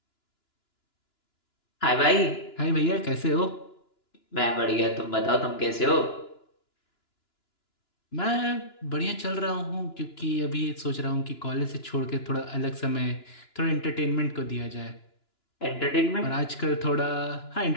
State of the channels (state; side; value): late; right; 2.9 ms